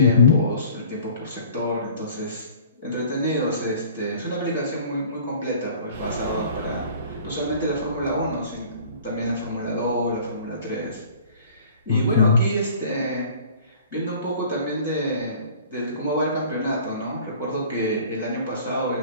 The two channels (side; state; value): both; inverted; correlation -0.48